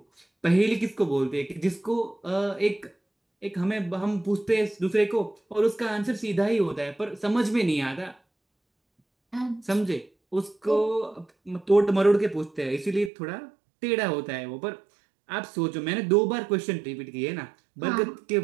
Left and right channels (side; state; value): left; drops out; at 13.1 s